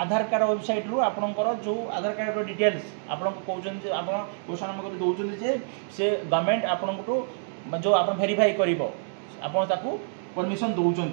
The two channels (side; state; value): left; silent; digital silence